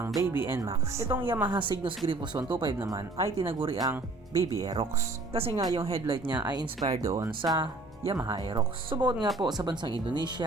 Baby NMAX, itong Yamaha Cygnus Grifos 125 naman ay tinaguri ang Baby Aerox. Kasi nga yung headlight niya ay inspired doon sa Yamaha Aerox. Subukan nga po sa bansang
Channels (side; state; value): left; quieter; 3.1 dB